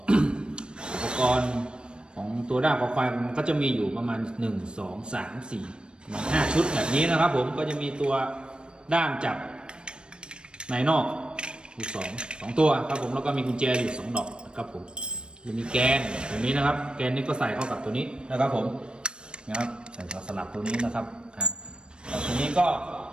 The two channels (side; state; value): left; late; 0.054 ms